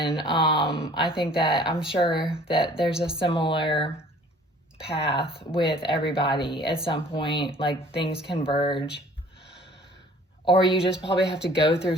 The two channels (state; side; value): normal; both; correlation 0.52